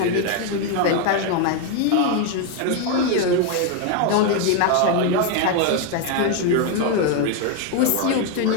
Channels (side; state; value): both; different; correlation 0.01